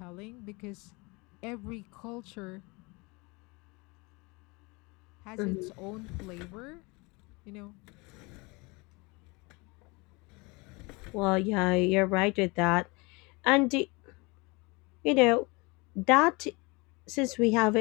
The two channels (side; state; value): right; quieter; 26.7 dB